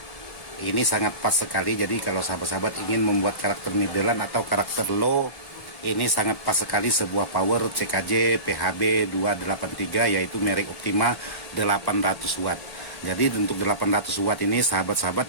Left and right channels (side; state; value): right; late; 1.1 ms